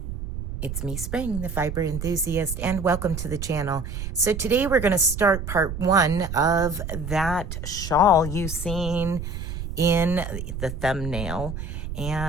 it's me Spring, the fiber enthusiast, and welcome to the channel. So today we're going to start part one of that shawl you've seen in the thumbnail.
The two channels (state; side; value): noise; right; rumble, 6 dB below the sound